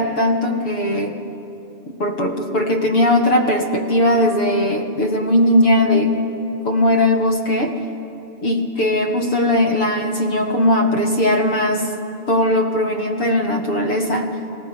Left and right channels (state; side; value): late; right; 7.0 ms